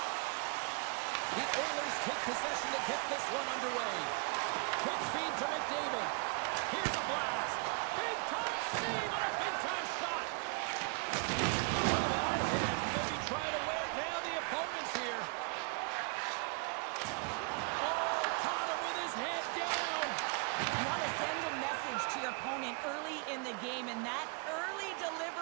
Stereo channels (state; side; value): quieter; left; 34.9 dB